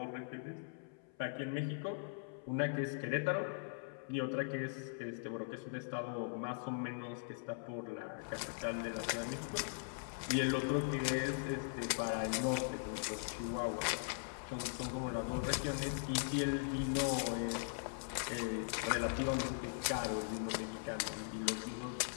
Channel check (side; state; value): right; silent; 51 dB below the other